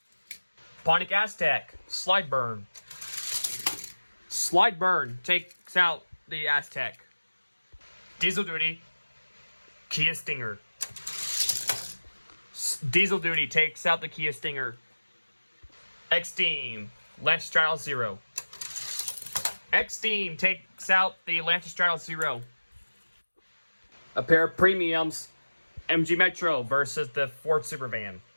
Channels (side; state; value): both; inverted; correlation -1.00